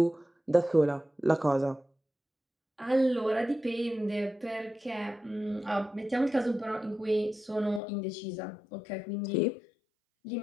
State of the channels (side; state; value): right; drops out; at 7.8 s